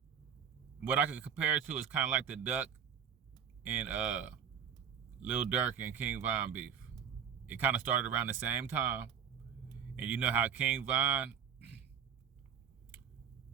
what I could compare it to is kind of like the Duck and Lil Durk and King Von beef. It kind of started around the same time. And you know how King Von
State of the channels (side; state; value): left; quieter; 7.9 dB